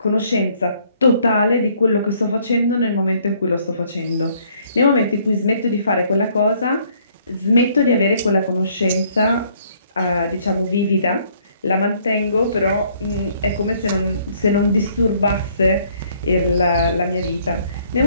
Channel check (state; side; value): inverted; both; correlation -0.64